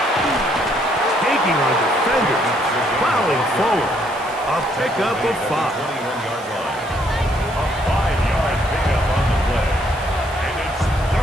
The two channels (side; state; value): right; noise; hiss, 20 dB below the sound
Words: Taking on defenders, plowing forward. A pickup of 5. A 5-yard pickup on the play. And it's